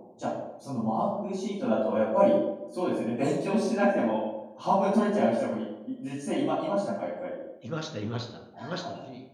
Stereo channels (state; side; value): identical; both; correlation 1.00